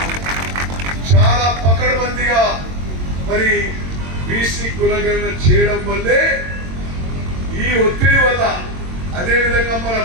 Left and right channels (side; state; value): left; late; 22 ms